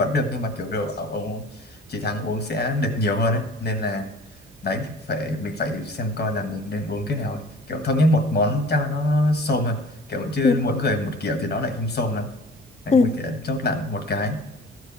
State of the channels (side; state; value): both; normal; correlation 0.45